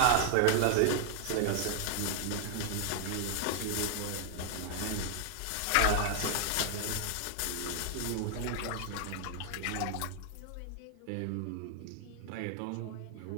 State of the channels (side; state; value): both; different; correlation 0.00